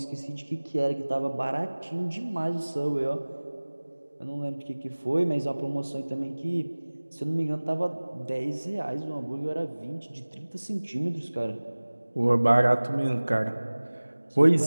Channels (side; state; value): both; inverted; correlation -1.00